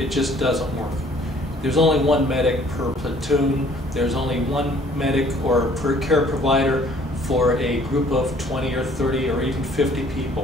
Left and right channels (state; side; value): normal; both; correlation 0.57